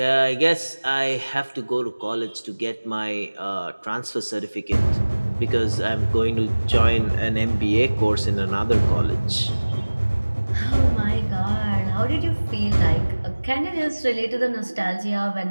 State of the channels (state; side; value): inverted; both; correlation -1.00